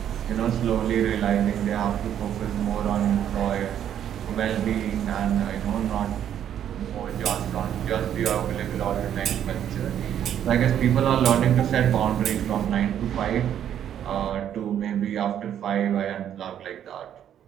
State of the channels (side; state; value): left; quieter; 10.0 dB